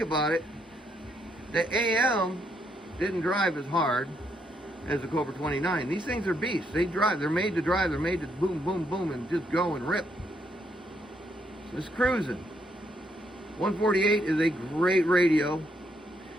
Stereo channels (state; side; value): normal; both; correlation 0.75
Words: it. The AM didn't drive as hard as the Cobra 29. These things are beasts. They drive. They're made to drive. They're made to boom, boom, boom, and just go and rip. So it's cruising. 148 is a great radio.